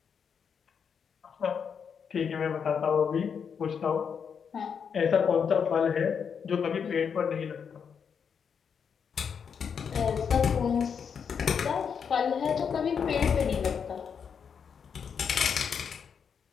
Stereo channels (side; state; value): right; quieter; 6.8 dB